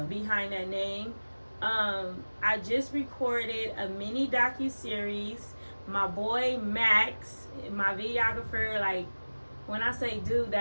behind that name. I just recorded a mini docu-series. My boy Max, my videographer, like, when I say dude,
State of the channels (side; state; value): both; inverted; correlation -1.00